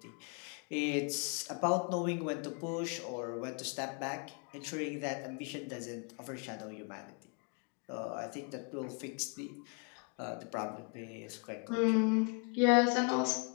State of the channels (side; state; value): right; quieter; 36.3 dB